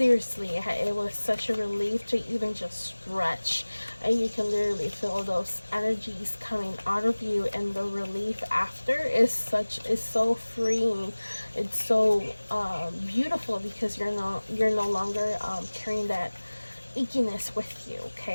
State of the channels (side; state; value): both; inverted; correlation -1.00